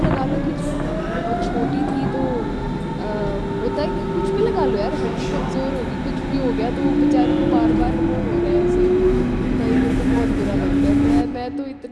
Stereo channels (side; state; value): both; identical; correlation 1.00